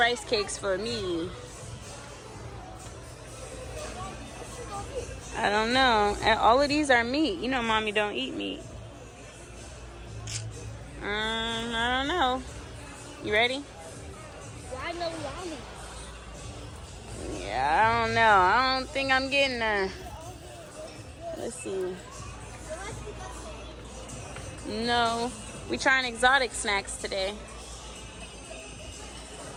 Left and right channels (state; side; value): identical; both; correlation 1.00